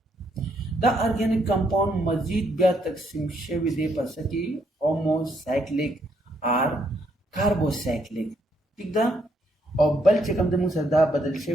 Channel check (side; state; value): both; normal; correlation 0.73